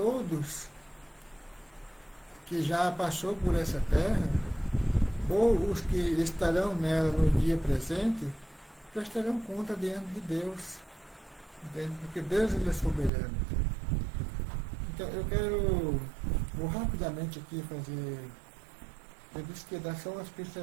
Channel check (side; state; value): left; drops out; at 13.1 s